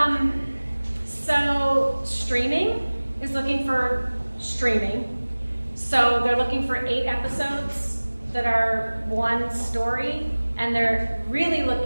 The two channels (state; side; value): inverted; both; correlation -1.00